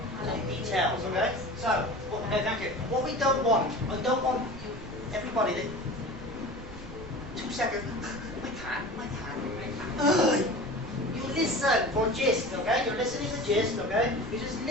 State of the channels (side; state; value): right; noise; rumble, 13 dB below the sound